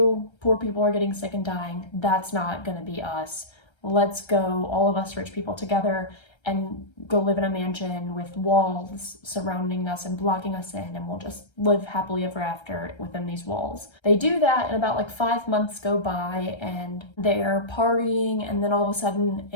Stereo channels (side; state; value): right; late; 1.3 ms